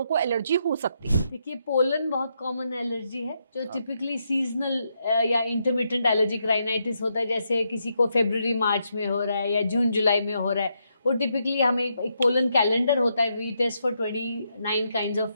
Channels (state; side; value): inverted; both; correlation -0.80